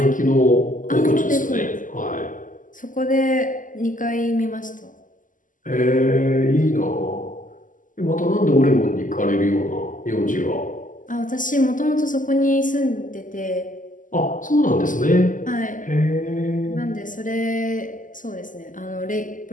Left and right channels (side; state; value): right; late; 0.38 ms